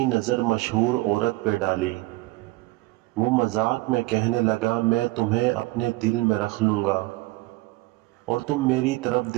नज़र मशहूर औरत पे डाली। वो मजाक में कहने लगा, मैं तुम्हें अपने दिल में रख लूँगा और तुम मेरी तरफ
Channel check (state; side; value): quieter; left; 20.8 dB